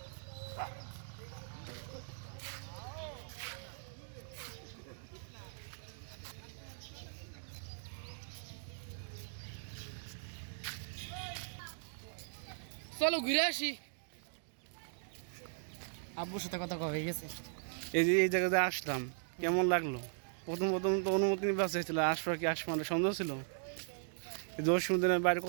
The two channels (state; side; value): silent; left; digital silence